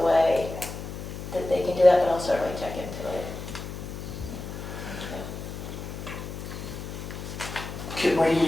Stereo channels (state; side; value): noise; left; hum, 8 dB below the sound